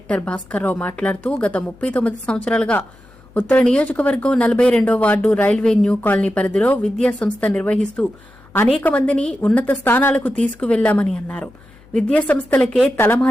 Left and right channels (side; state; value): left; noise; hum, 27 dB below the sound